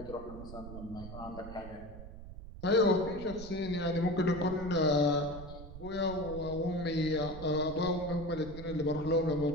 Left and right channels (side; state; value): right; noise; rumble, 12 dB below the sound